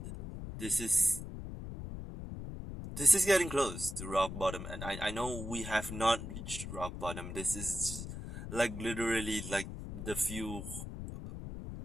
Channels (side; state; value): left; noise; rumble, 8 dB below the sound